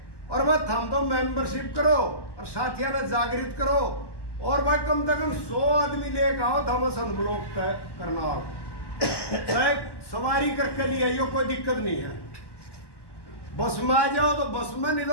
और वह हम तो मेंबरशिप करो और साथियों ने जागृत करो, और भाई कम से कम 100 आदमी लेकर आओ, थॉमसन ब्लॉक तय करना। सवारी करके लिए आइयो, कोई दिक्कत नहीं है। बस में आ जाओ तो बस में, नहीं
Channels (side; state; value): right; late; 1.1 ms